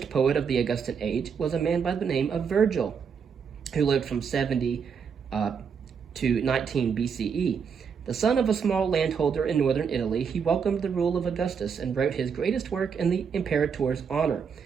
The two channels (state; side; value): quieter; left; 6.5 dB